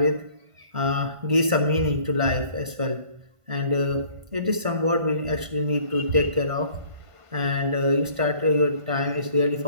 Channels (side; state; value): left; late; 1.5 ms